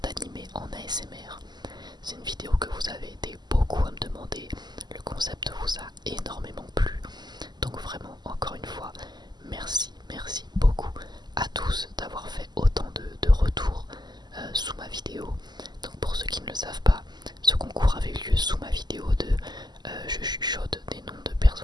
d'animé en ASMR. C'est une vidéo que vous avez été beaucoup à me demander, le concept vous a énormément plu, donc vraiment encore une fois, merci beaucoup à tous d'avoir fait autant de retours sous ma vidéo. Donc pour ceux qui ne le savent pas, ce concours avait eu lieu sous ma vidéo de je chuchote des noms de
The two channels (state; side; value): late; left; 0.21 ms